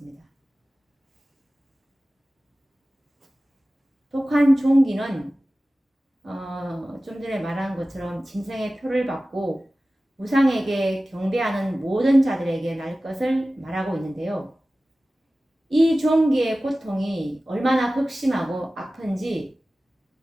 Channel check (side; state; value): both; normal; correlation 0.96